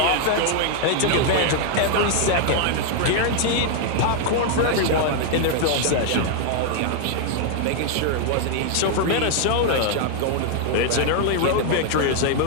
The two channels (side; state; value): both; different; correlation 0.00